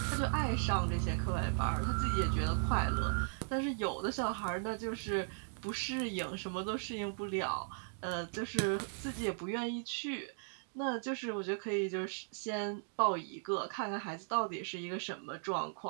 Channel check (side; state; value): left; silent; digital silence